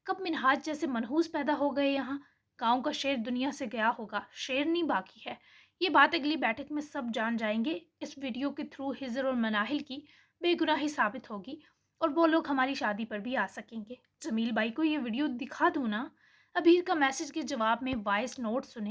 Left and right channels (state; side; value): identical; both; correlation 1.00